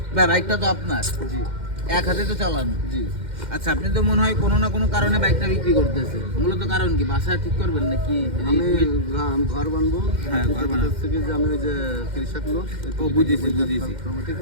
বাইকটা তো আপনার, জি, এক হাতে তো চালানো, জি। আচ্ছা, আপনি তো মনে হয় কোনো না কোনো কারণে বাইকটা বিক্রি করতেছে। মূলত কারণ কি? বাসা ঠিক করবেন নাকি? আমি ঘর বানবো। হ্যাঁ, ঘর বানাবো থেকে যে আমি ওই যে কৃষক লোক, ও বুঝেছি। ঠিক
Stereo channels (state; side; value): late; left; 2.1 ms